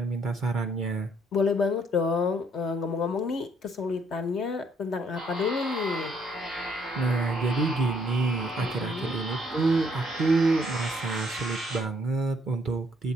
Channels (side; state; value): both; normal; correlation 0.67